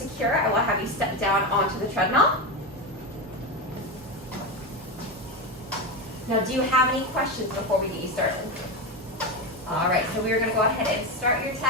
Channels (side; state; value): both; normal; correlation 0.15